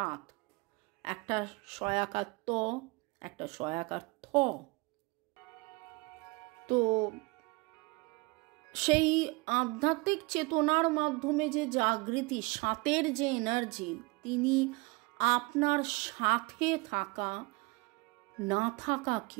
একটা সয়াকার ত, একটা সয়াকার থ, তো সেই আধ্যাত্মিক চেতনার মাধ্যমে যে জাগৃতি, 7-এর যে এনার্জি, তিনি আপনার সাথে থাকা না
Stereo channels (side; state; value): left; quieter; 26.3 dB